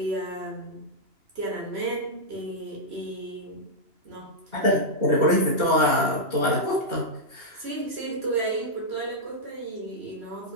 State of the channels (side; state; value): left; late; 2.7 ms